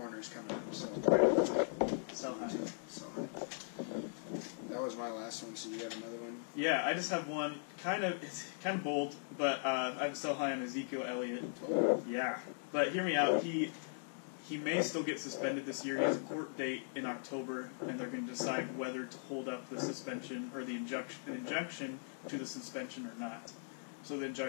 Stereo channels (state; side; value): silent; right; digital silence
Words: coming up. So, Sell high. Sell high. That was my last one. So you have another one? Yeah, I just have one. It's kind of bold, but I have sell high on Ezekiel Elliott. Oh. Yeah, but hear me out. He may still get suspended this year. He has a court date in October, and they're going to decide whether to hold up the suspension or the injunction to the suspension or not. So the